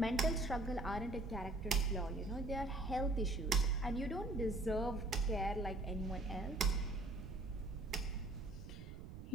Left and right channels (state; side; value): noise; right; rumble, 11 dB below the sound